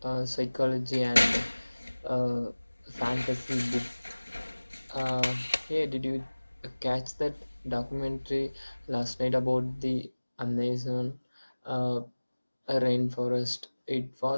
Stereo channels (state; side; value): inverted; both; correlation -1.00